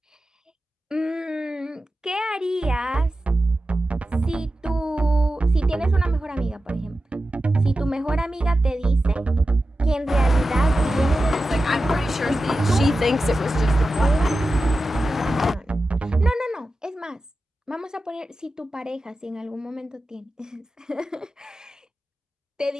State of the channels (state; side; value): normal; both; correlation 0.93